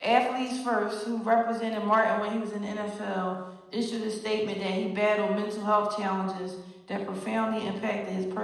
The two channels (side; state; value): both; identical; correlation 1.00